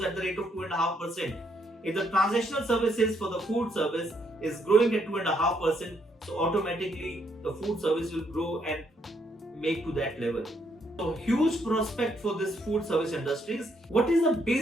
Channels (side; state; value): both; normal; correlation 0.73